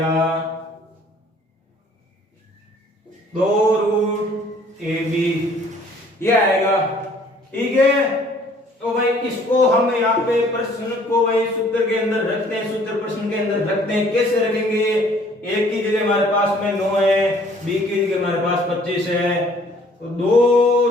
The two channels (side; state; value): both; normal; correlation 0.57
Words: 2 रूट ab ये आएगा। ठीक है, तो भाई इसको हम यहाँ पे प्रश्न को भाई सूत्र के अंदर रखते हैं, सूत्र प्रश्न के अंदर रखते हैं। कैसे रखेंगे, a की जगह हमारे पास में 9 है, b की जगह हमारे पास 25 है, तो 2